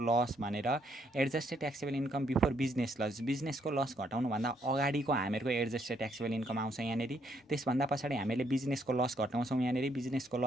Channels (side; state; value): both; normal; correlation 0.72